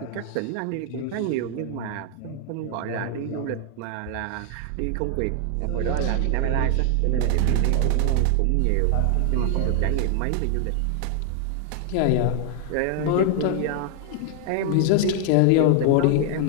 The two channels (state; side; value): different; both; correlation 0.00